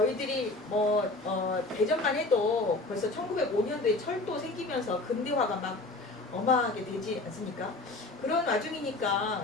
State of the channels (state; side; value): quieter; right; 3.0 dB